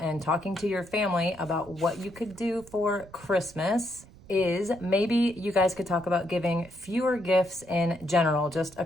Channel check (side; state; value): right; noise; rumble, 22 dB below the sound